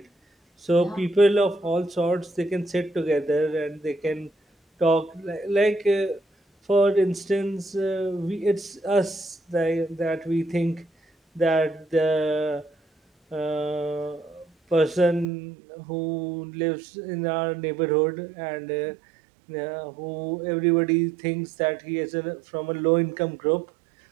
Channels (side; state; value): left; drops out; at 15.2 s